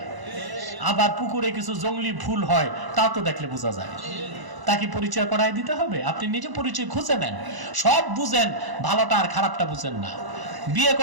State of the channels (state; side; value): late; left; 1.0 ms